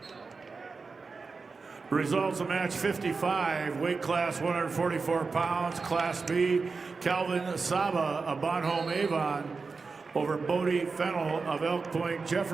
Results of match 55, weight class 144 pounds, Class B, Calvin Saba of Bonhomme Avon over Bodie Fennell of Elk Point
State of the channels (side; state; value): left; quieter; 4.5 dB